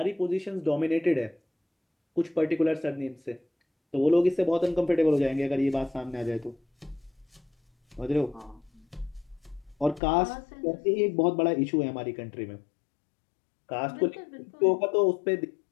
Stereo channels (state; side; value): drops out; right; at 10.0 s